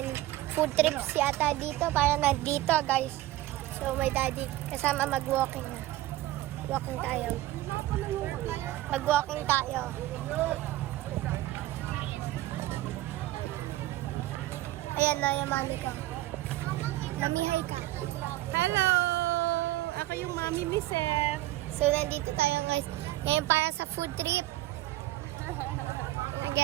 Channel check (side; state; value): left; quieter; 16.2 dB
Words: food trips yata dito. Parang nandito guys. So my daddy kasama mag-walking na. Walking tayo. Mag-walking tayo. Ayan na yung mami ko. Mami, hi ka. Hello! Ako yung mami ni Seth. So nandito tayo guys. Ngayon para sa food trip.